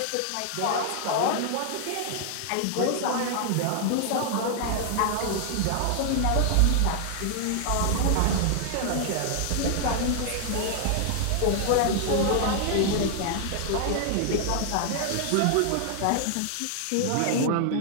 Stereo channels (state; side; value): different; both; correlation 0.00